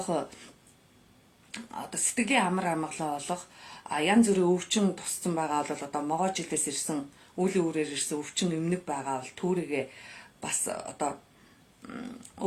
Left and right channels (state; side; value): identical; both; correlation 1.00